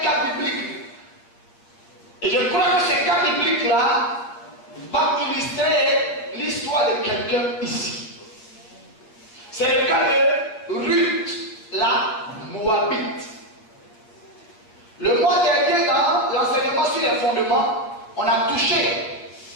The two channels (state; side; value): late; right; 8.7 ms